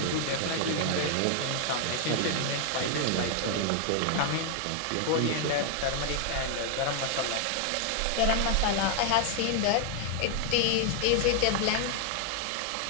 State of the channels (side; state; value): both; different; correlation 0.00